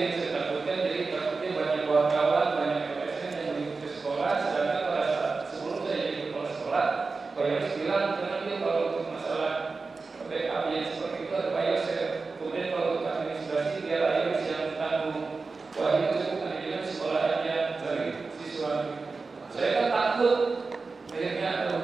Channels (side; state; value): left; quieter; 4.1 dB